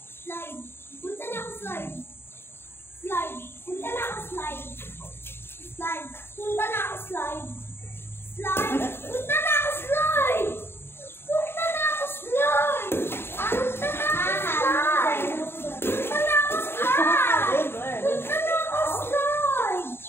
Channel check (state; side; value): late; right; 0.11 ms